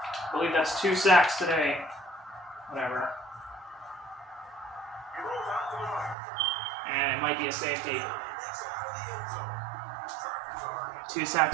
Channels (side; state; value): left; drops out; at 6.2 s